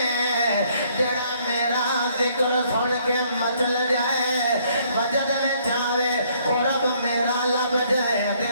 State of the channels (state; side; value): inverted; both; correlation -0.65